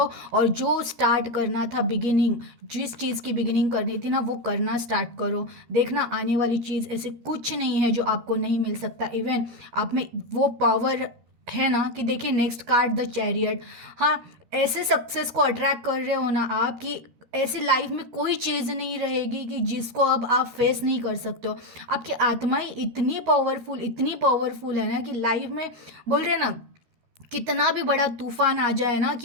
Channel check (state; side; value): late; left; 13 ms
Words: और जो स्टार्ट करना था बिगिनिंग, जिस चीज़ की बिगिनिंग करनी थी ना वो करना स्टार्ट करो। देखना आने वाली चीज़ ऐसे कुछ नहीं है जो आपको नहीं मिल सकता। इवन आप में वो पावर है ना कि देखिए नेक्स्ट कार्ड द चैरियट। हाँ, ऐसे सक्सेस को अट्रैक्ट कर रहे हो ना आप कि ऐसी लाइफ में कोई चीज़ नहीं रहेगी कि जिसको अब आप फेस नहीं कर सकते हो। आपकी आत्मा ही इतनी पावरफुल है ना कि लाइफ में बोल रहे हैं ना, कितना भी बड़ा तूफान आ जाए ना